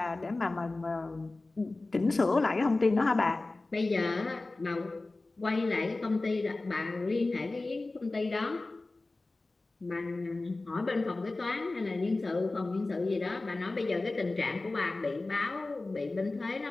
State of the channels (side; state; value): right; quieter; 3.2 dB